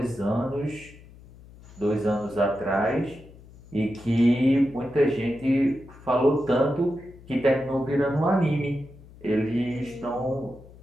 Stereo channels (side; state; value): left; noise; hum, 21 dB below the sound